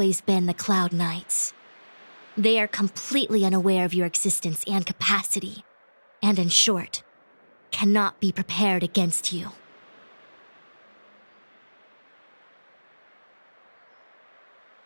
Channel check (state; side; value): inverted; both; correlation -1.00